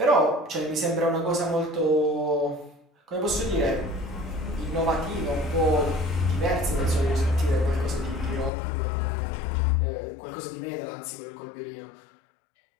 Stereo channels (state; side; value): drops out; right; at 8.5 s